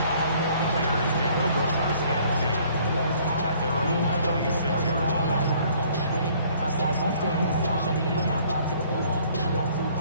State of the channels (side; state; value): both; inverted; correlation -0.59